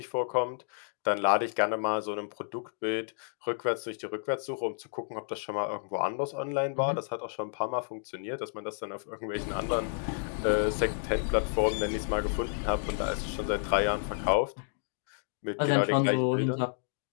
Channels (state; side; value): silent; right; digital silence